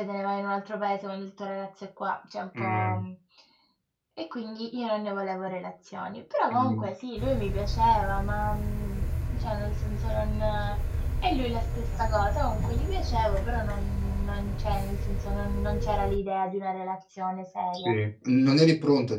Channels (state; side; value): identical; both; correlation 1.00